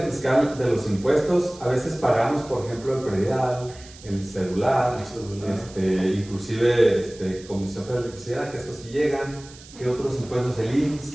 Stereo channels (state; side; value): noise; right; hiss, 20 dB below the sound